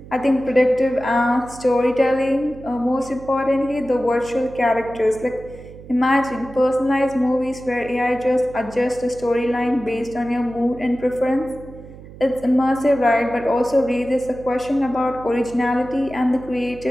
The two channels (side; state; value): right; noise; hum, 17 dB below the sound